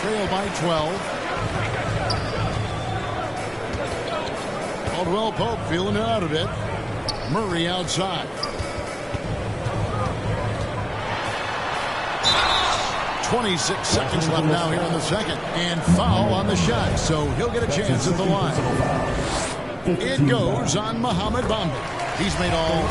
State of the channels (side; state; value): both; identical; correlation 1.00